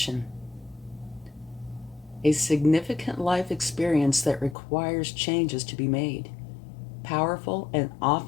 A significant life experience that requires changes to be made. Powerful and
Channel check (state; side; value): drops out; right; at 4.5 s